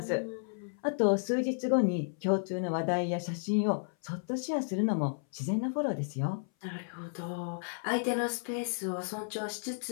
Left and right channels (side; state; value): right; silent; 56 dB below the other